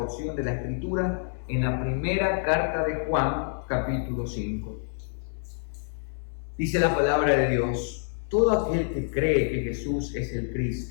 de la escritura en la primera carta de Juan, capítulo 5. Dice la palabra de Dios, todo aquel que cree que Jesús es el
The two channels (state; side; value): silent; right; 58 dB below the other